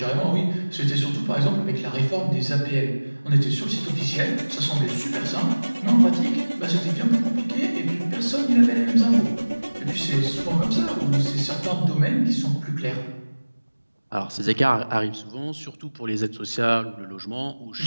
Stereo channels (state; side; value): inverted; both; correlation -1.00